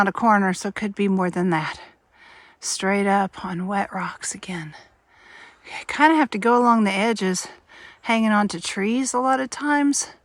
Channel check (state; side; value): identical; both; correlation 1.00